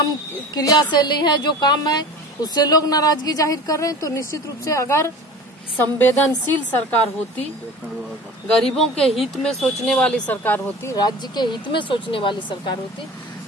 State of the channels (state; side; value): normal; both; correlation 0.38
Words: क्रियाशैली है, जो काम है, उससे लोग नाराजगी जाहिर कर रहे हैं। तो निश्चित रूप से अगर संवेदनशील सरकार होती, गरीबों के हित में सोचने वाली सरकार होती, राज्य के हित में सोचने वाली सरकार होती,